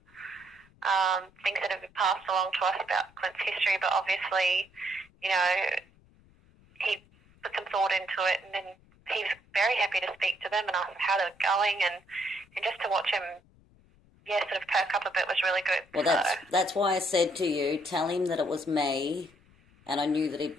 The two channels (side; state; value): left; noise; rumble, 29 dB below the sound